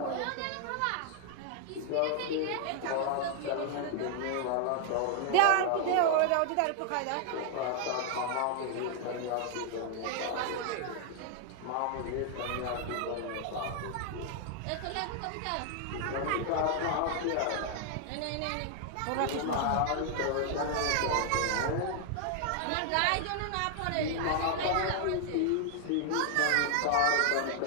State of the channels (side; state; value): both; different; correlation 0.00